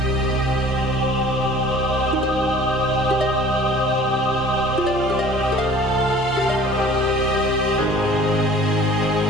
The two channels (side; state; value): both; normal; correlation 0.48